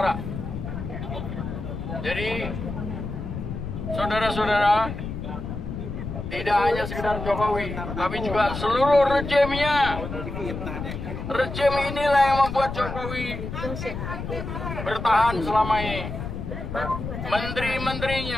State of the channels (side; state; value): left; noise; rumble, 6 dB below the sound